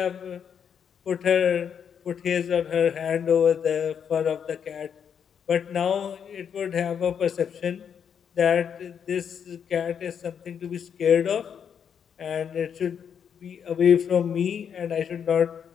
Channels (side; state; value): right; quieter; 7.7 dB